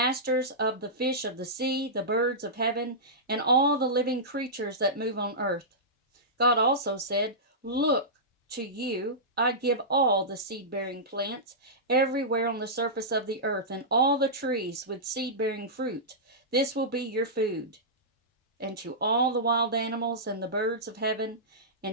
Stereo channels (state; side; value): normal; both; correlation -0.15